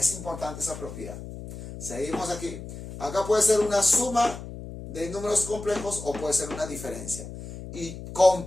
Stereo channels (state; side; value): noise; left; hum, 11 dB below the sound